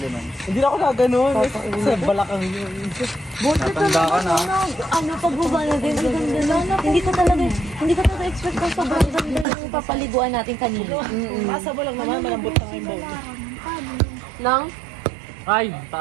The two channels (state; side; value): drops out; left; at 9.5 s